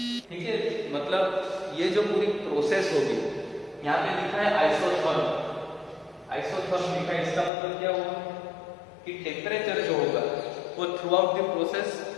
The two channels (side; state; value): right; drops out; at 7.5 s